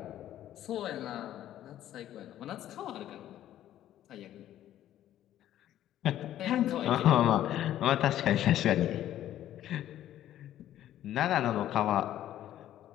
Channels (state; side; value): quieter; right; 12.3 dB